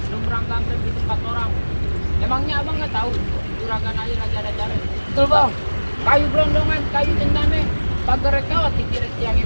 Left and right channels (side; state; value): both; inverted; correlation -1.00